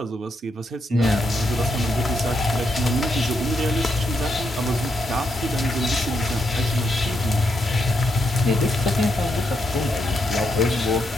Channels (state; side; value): normal; both; correlation 0.80